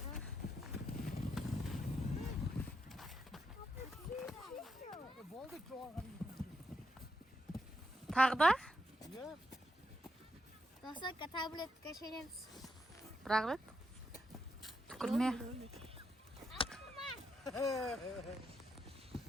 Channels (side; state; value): both; normal; correlation 0.81